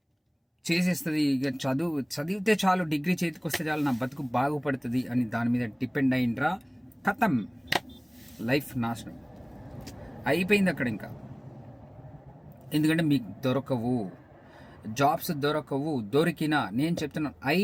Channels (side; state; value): both; identical; correlation 1.00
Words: చేసేస్తుంది, ఇక చదివితే చాలు, డిగ్రీ చేతికి వస్తే చాలు, నా బతుకు బాగుపడుతుంది అని దాని మీద డిపెండ్ అయిండ్రా, ఖతం, లైఫ్ నాశనం అయిపోయింది అక్కడ ఇంకా. ఎందుకంటే మీకు దొరకవు, జాబ్స్ దొరకవు. దొరికినా నేను చెప్తున్నాను,